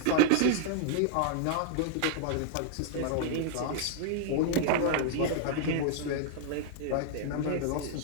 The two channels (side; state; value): both; different; correlation -0.01